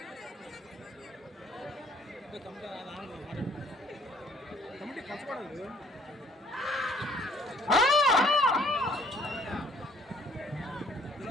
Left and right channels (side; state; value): both; normal; correlation 0.60